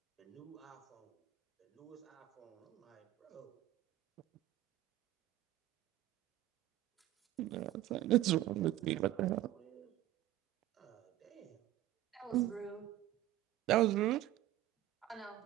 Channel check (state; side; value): quieter; left; 14.6 dB